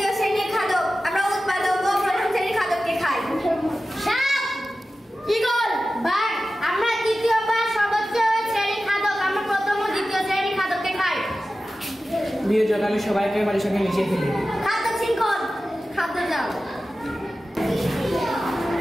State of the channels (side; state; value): both; normal; correlation 0.94